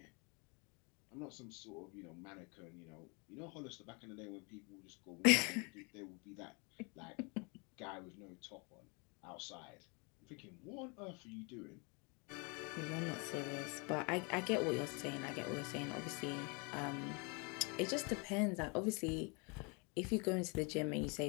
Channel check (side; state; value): right; quieter; 32.2 dB